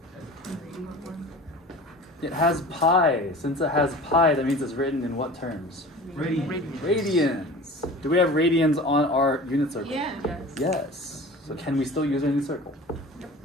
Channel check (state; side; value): normal; both; correlation 0.39